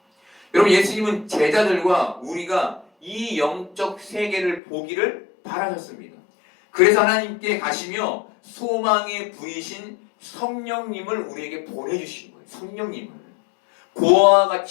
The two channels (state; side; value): drops out; right; at 4.6 s